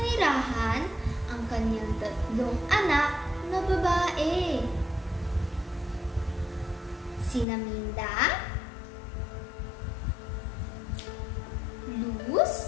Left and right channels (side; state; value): right; drops out; at 7.5 s